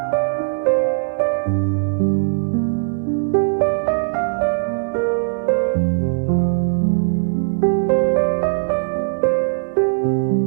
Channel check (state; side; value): silent; left; digital silence